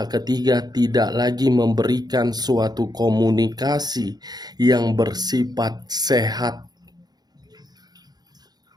ketiga tidak lagi memberikan suatu komunikasi yang bersifat sehat.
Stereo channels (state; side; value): late; left; 0.19 ms